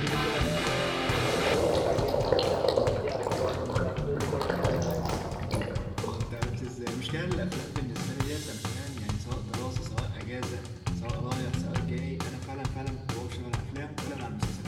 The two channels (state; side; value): identical; both; correlation 1.00